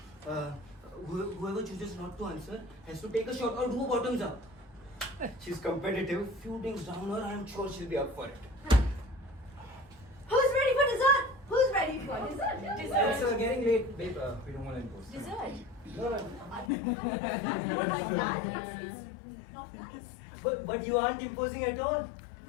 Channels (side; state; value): right; drops out; at 16.7 s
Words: whoever chooses not to answer has to take a shot or do a bottoms up. She's competitive. Few drinks down her, I'm sure she'll be up for it. Who's ready for dessert? Who's ready for dessert? Dessert. Sir, getting late. babe, we don't want to impose. Dessert. No, no. Not like that. It's not nice. But you aren't imposing at all.